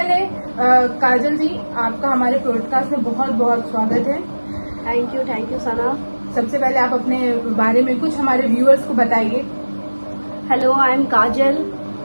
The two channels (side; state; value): both; inverted; correlation -1.00